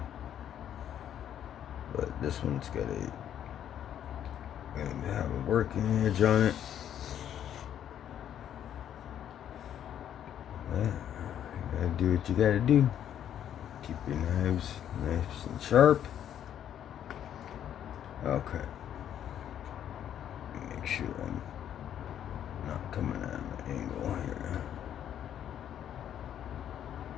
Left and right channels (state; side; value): quieter; right; 10.1 dB